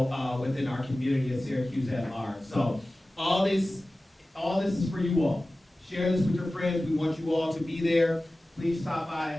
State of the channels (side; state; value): both; normal; correlation 0.96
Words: within our community of Syracuse at large. So all this is for you all. Share this with your friends. We want you all to be there. Please stop by